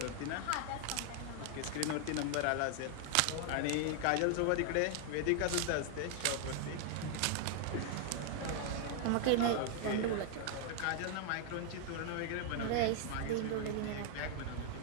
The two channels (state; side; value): different; both; correlation 0.00